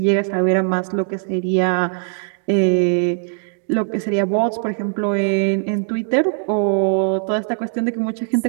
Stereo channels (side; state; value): left; silent; digital silence